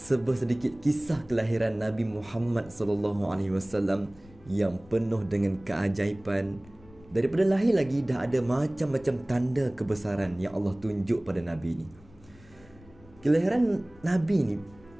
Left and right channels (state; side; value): noise; left; rumble, 24 dB below the sound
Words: kisah kelahiran Nabi Muhammad sallallahu alaihi wasallam yang penuh dengan keajaiban. Daripada lahir lagi dah ada macam-macam tanda kebesaran yang Allah tunjuk pada Nabi ni. Kelahiran Nabi ni